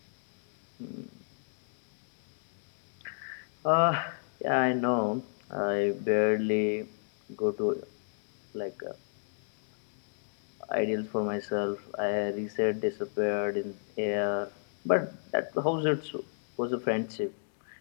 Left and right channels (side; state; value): right; silent; digital silence